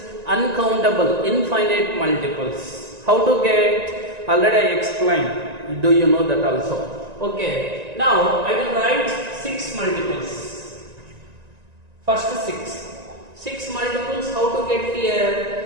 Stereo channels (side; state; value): left; late; 1.9 ms